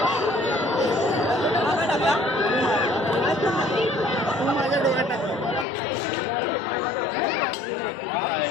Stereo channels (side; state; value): right; drops out; at 5.7 s